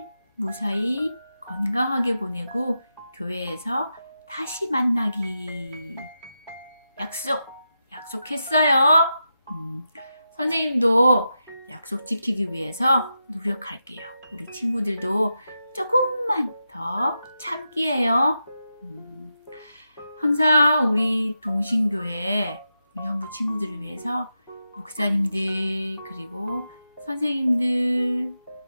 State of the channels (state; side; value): inverted; both; correlation -0.88